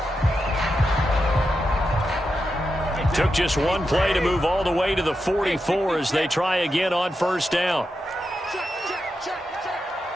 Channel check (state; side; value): normal; both; correlation 0.88